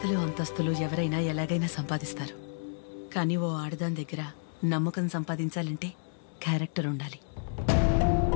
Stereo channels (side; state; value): right; silent; digital silence